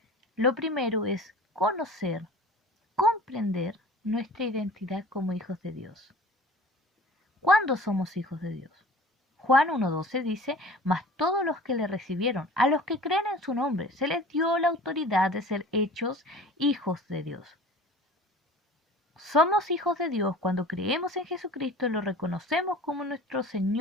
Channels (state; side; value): normal; both; correlation 0.42